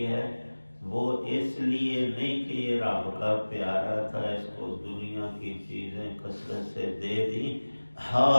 ہے وہ اس لیے نہیں کہ یہ رب کا پیارا تھا، اس کو دنیا کی چیزیں کثرت سے دے دی،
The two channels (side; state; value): both; inverted; correlation -1.00